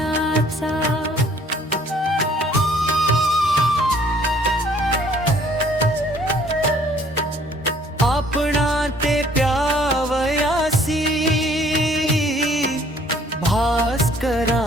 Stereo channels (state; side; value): normal; both; correlation 0.58